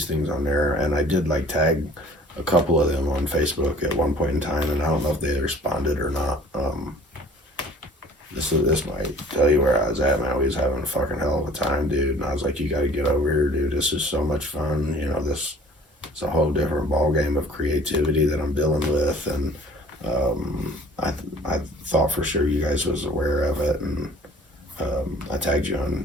things on there, and I did like tag a couple of them on Facebook at one point in time, and I don't know if they responded or not. This might tell you where I was at, man. We was having a fucking hell of a time, dude. And I was like, you got to get over here, dude. This is so much fun. You know, it's a whole different ball game of creativity that I'm dealing with, and I thought for sure you guys was aware of it, and I tagged you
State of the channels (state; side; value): normal; both; correlation 0.50